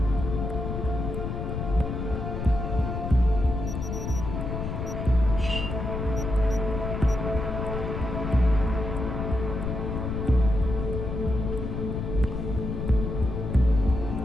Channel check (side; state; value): left; noise; rumble, 4 dB below the sound